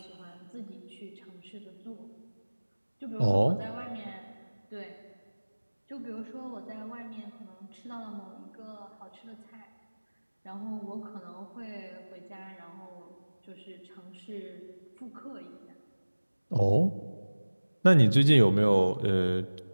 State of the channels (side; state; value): both; inverted; correlation -1.00